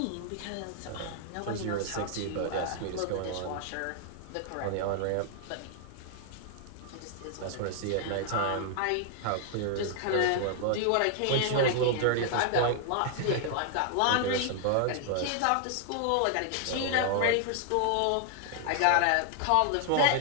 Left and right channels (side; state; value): both; different; correlation 0.00